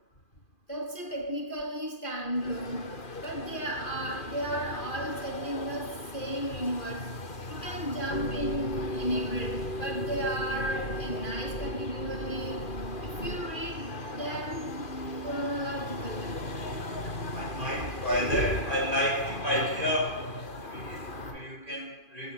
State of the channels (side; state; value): right; late; 2.4 ms